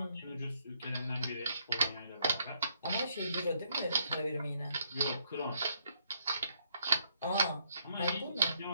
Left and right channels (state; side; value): inverted; both; correlation -0.72